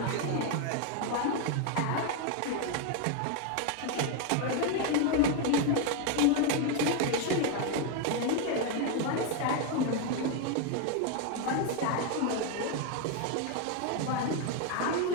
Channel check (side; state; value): both; different; correlation 0.01